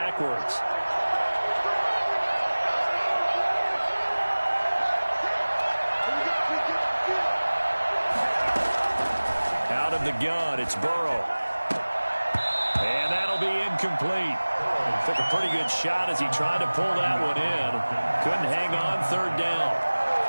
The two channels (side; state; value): both; inverted; correlation -1.00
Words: Out of the gun, it's Burrow. And that'll be incomplete. Took a pretty good shot as he tried to pull that one in. Couldn't hang on 3rd down.